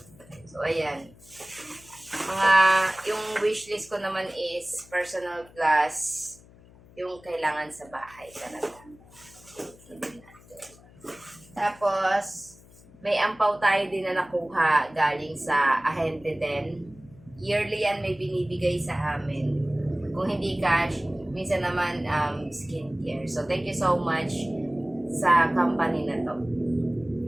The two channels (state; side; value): noise; left; hum, 24 dB below the sound